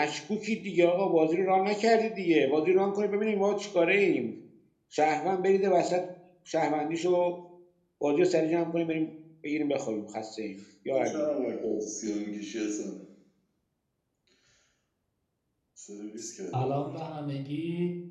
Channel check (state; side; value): identical; both; correlation 1.00